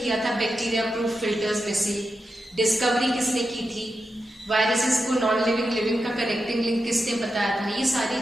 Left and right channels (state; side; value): normal; both; correlation 0.89